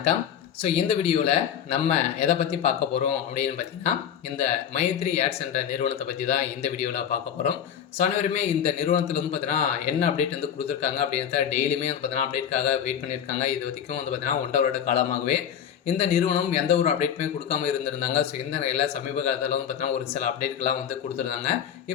ஸோ இந்த வீடியோவில் நம்ம எதை பற்றி பார்க்க போகிறோம் அப்படின்னு பார்த்தீங்கன்னா, இந்த மைத்ரி ஆட்ஸ் என்ற நிறுவனத்தை பற்றி தான் இந்த வீடியோவில் பார்க்க போகிறோம். ஸோ அனைவருமே இந்த நிறுவனத்தில் வந்து பார்த்தீங்கன்னா என்ன அப்டேட் வந்து கொடுத்துருக்காங்க அப்படின்றத டெய்லியுமே வந்து பார்த்தீங்கன்னா அப்டேட்காக வெயிட் பண்ணியிருக்காங்க. இது வரைக்கும் வந்து பார்த்தீங்கன்னா 1.5 வருட காலமாகவே இந்த நிறுவனம் எந்த ஒரு அப்டேட்டுமே கொடுக்காம இருந்திருந்தாங்க. ஸோ இந்த நிலையில் சமீப காலத்தில் வந்து பார்த்தீங்கன்னா ஒரு சில அப்டேட்கள்லாம் வந்து கொடுத்துருந்தாங்க.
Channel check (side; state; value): right; quieter; 8.8 dB